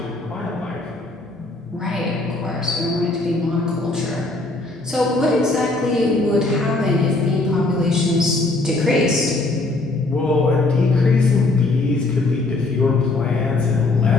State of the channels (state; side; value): quieter; right; 3.1 dB